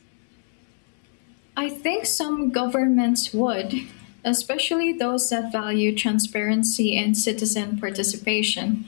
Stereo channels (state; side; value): silent; right; 63 dB below the other